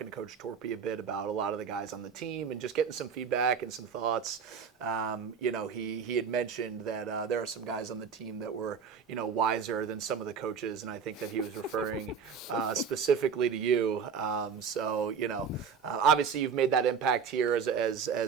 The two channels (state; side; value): quieter; left; 6.3 dB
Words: to Coach Torpy a bit about a lot of the guys on the team and just getting some feedback and some thoughts, he had mentioned that there are some guys on the team that were, wiser than some of the coaches, and I think that he was referring specifically to you. Obviously you've made that impact here as